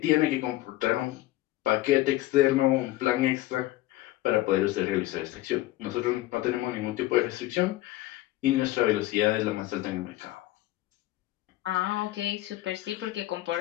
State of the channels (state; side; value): quieter; right; 16.6 dB